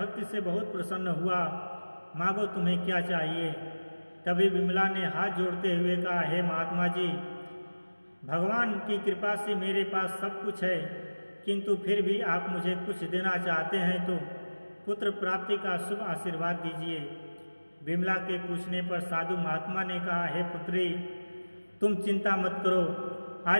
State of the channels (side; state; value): both; inverted; correlation -1.00